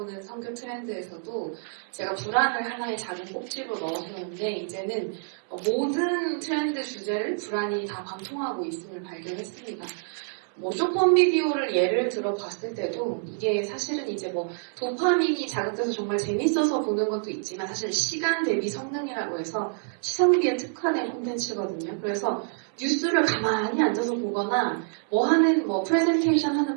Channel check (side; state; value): left; silent; 60 dB below the other